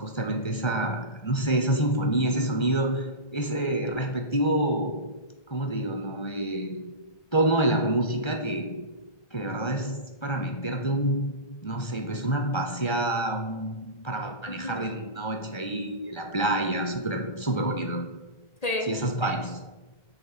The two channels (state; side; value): late; right; 1.3 ms